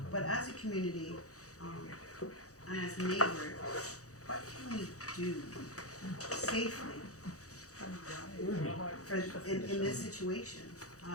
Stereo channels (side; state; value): right; late; 0.66 ms